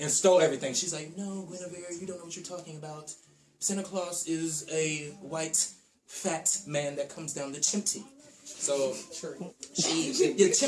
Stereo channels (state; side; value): identical; both; correlation 1.00